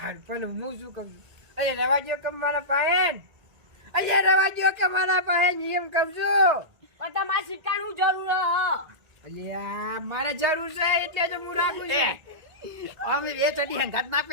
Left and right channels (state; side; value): late; left; 1.8 ms